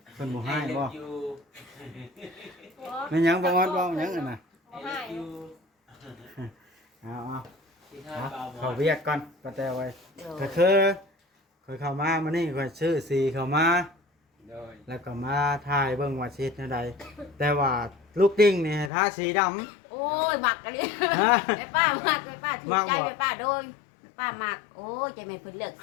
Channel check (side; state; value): right; drops out; at 18.9 s